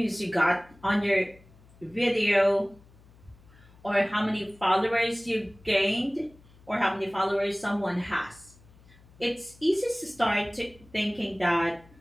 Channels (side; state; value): left; noise; hum, 26 dB below the sound